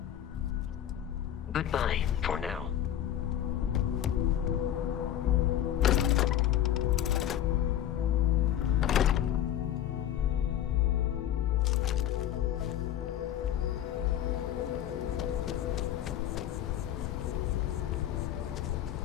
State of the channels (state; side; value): quieter; right; 11.2 dB